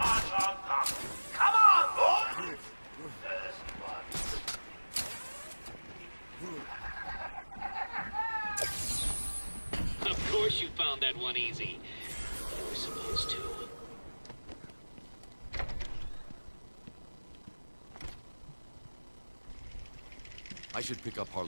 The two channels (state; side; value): inverted; both; correlation -1.00